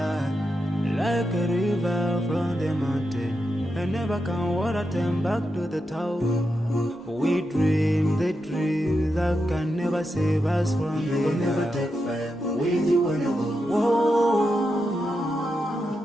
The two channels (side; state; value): both; normal; correlation 0.86